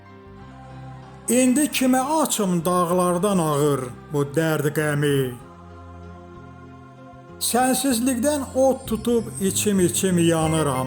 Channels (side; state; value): both; identical; correlation 1.00